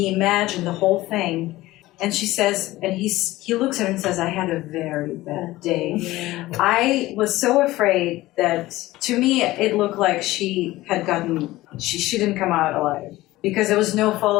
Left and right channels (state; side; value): quieter; right; 17.6 dB